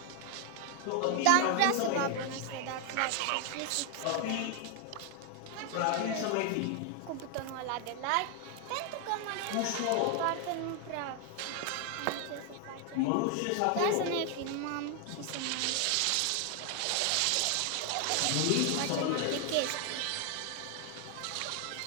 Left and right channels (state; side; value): different; both; correlation 0.00